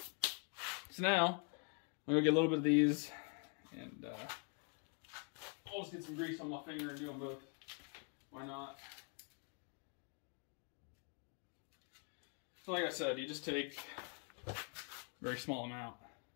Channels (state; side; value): quieter; right; 36.2 dB